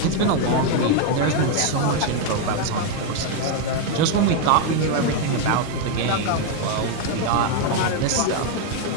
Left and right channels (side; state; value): both; different; correlation 0.01